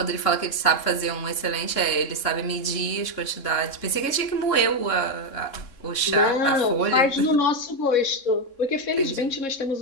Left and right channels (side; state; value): right; late; 3.6 ms